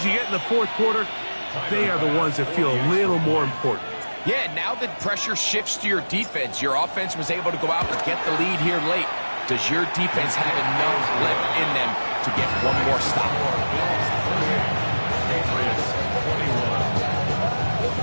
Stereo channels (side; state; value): both; inverted; correlation -1.00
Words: you get in the 4th quarter, they are the ones that feel a little more important. Yeah, now that pressure shifts to your defense, your offense was able to go out and get the lead here late. Does your defense have enough left in them to get one more stop? Patriots 21.